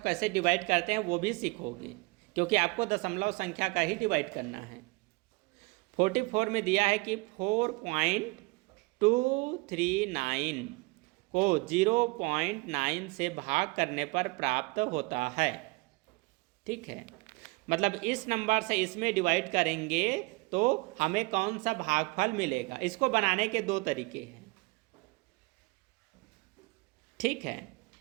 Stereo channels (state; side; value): quieter; left; 26.0 dB